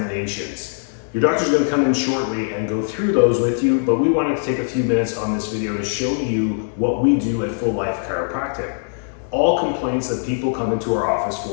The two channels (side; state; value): right; silent; digital silence